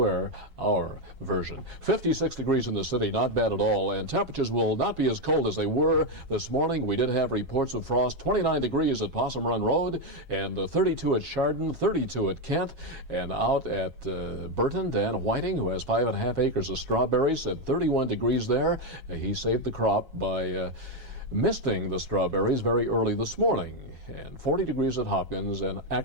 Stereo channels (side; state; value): left; late; 7.3 ms